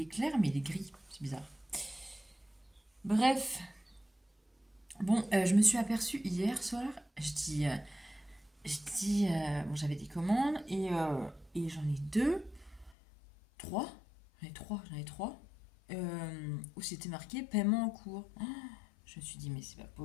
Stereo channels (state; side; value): drops out; right; at 13.0 s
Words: clair, mais il est gris. C'est bizarre. Bref. Bon, je me suis aperçue hier soir. Bon, j'avais des commandes et j'en ai 2, 3. J'en ai trois. Où c'était marqué paiement en cours. Oh, je me suis dit, mais c'est pas